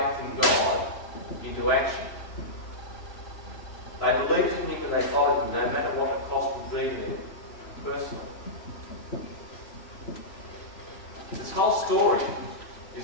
in God into action. They believed in him and they followed him, no matter what the cost would be to them personally. This whole story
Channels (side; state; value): right; late; 3.0 ms